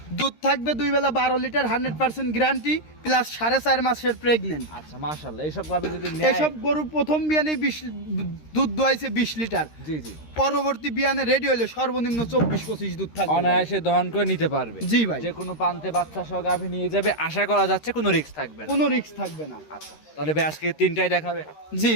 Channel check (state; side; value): late; right; 13 ms